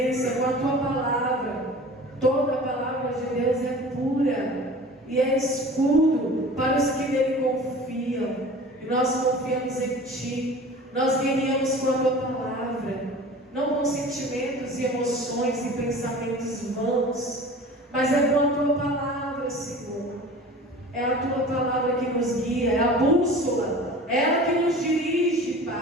com a Tua palavra. Toda a palavra de Deus é pura e é escudo para os que nele confiam. E nós confiamos em Ti. Nós guerreamos com a Tua palavra, não com sentimentos e emoções e pensamentos vãos, mas é com a Tua palavra, Senhor. É a Tua palavra que nos guia, é a bússola, é ela que nos dirige,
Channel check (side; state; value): both; normal; correlation 0.40